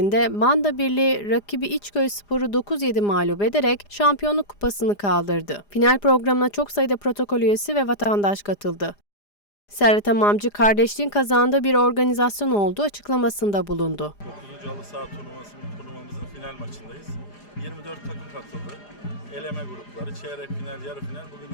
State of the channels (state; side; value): late; right; 4.9 ms